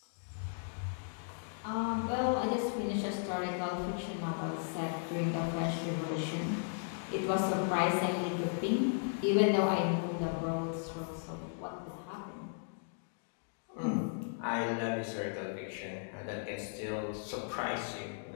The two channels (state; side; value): silent; right; digital silence